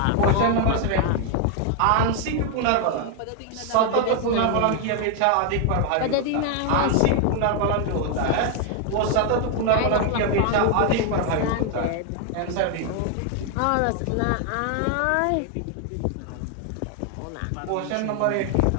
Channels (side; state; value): both; different; correlation 0.00